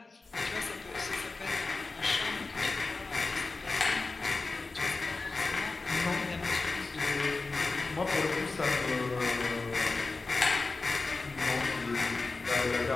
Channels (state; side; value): quieter; right; 3.8 dB